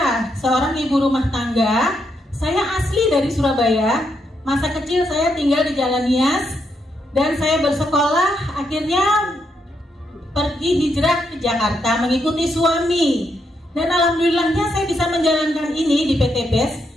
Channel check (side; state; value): both; normal; correlation 0.79